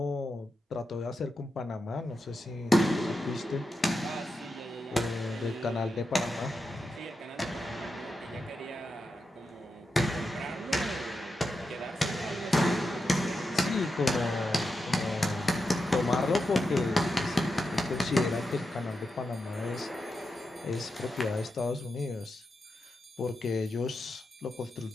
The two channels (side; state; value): both; normal; correlation 0.88